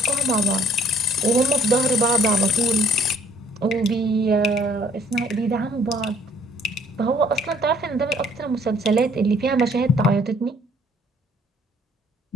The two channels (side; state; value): both; normal; correlation 0.60